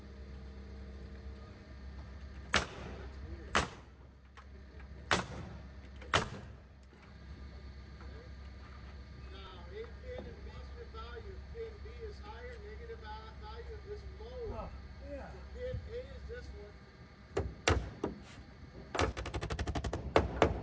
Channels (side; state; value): both; identical; correlation 1.00